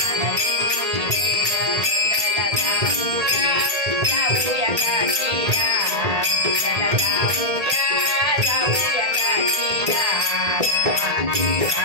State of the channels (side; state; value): left; late; 1.8 ms